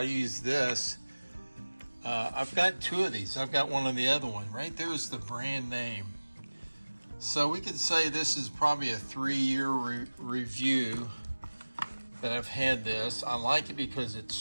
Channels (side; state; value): both; inverted; correlation -1.00